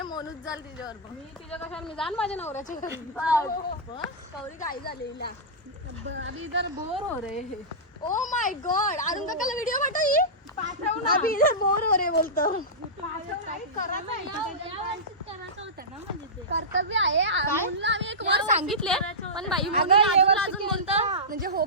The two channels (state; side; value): normal; both; correlation -0.14